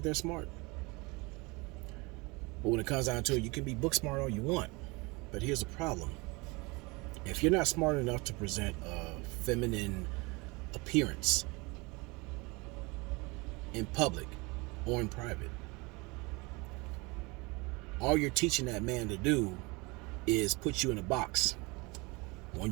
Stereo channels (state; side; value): quieter; left; 25.9 dB